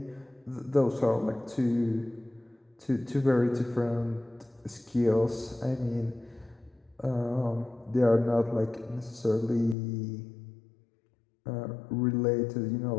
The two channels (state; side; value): drops out; right; at 9.8 s